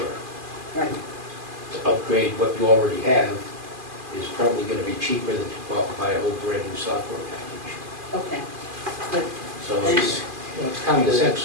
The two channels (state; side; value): late; left; 2.4 ms